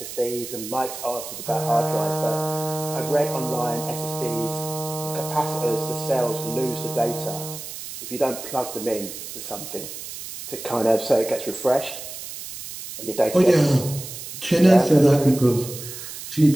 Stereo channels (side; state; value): right; noise; hiss, 10 dB below the sound